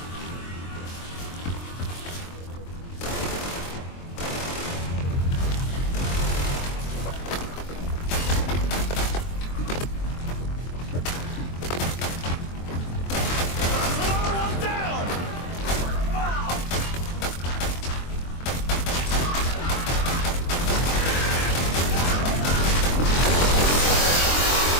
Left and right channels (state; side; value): late; right; 23 ms